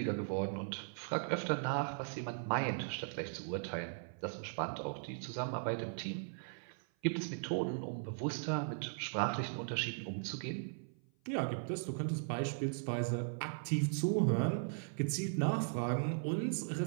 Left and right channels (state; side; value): silent; left; 52 dB below the other